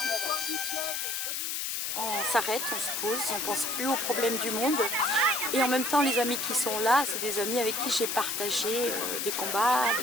On s'arrête, on se pose, on ne pense plus aux problèmes du monde. Et en même temps, les amis qui sont là, c'est des amis avec qui j'ai partagé des combats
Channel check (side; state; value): left; noise; hiss, 2 dB below the sound